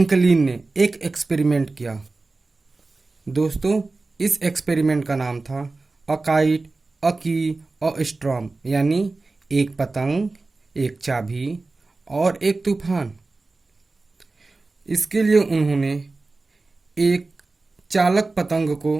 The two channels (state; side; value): quieter; left; 3.5 dB